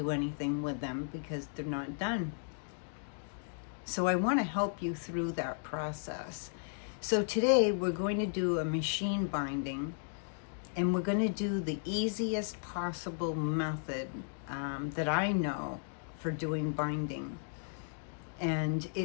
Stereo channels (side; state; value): right; silent; digital silence